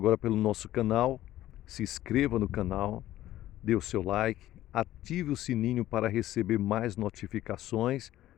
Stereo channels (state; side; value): quieter; right; 14.1 dB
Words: pelo nosso canal, se inscreva no canal, dê o seu like, ative o sininho para receber mais notificações